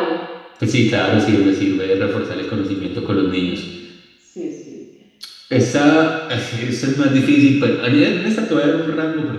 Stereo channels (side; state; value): both; identical; correlation 1.00